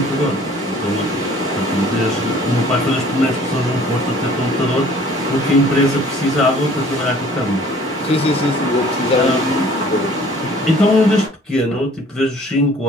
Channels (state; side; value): normal; both; correlation 0.53